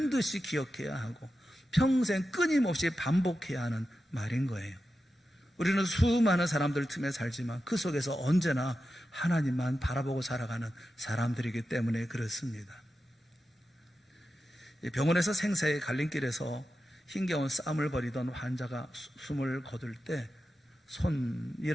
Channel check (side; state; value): both; normal; correlation 0.91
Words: 기억해야 하고 평생 끊임없이 반복해야 하는 말인 거예요. 우리는 수많은 사람들 틈에 살지만 그 속에서 언제나 하나님만 바라보고 살아가는 사람들이기 때문에 그렇습니다. 병원에서 생사의 갈림길에서 힘겨운 싸움을 벌이던 환자가 숨을 거둘 때